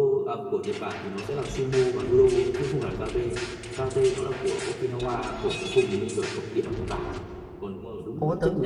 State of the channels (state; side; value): identical; both; correlation 1.00